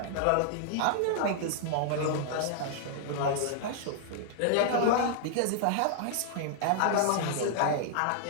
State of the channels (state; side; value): different; both; correlation -0.01